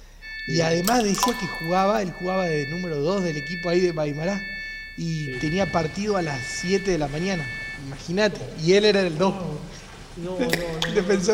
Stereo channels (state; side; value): identical; both; correlation 1.00